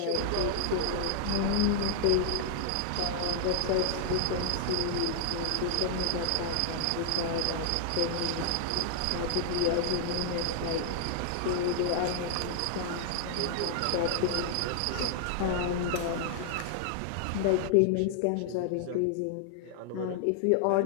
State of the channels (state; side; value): different; both; correlation -0.01